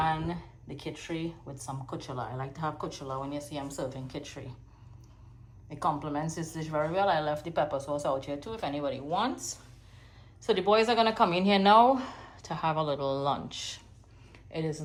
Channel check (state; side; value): identical; both; correlation 1.00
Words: the kitchery with some kuchela. I like to have kuchela when you see I'm serving kitchery. It complements this dish very well. I left the pepper sauce out here too if anybody wants. So the boys are going to come in here now to have a little lunch. It is